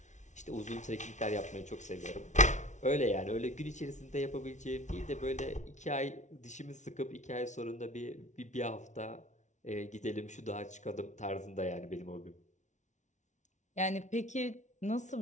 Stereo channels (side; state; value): right; late; 0.35 ms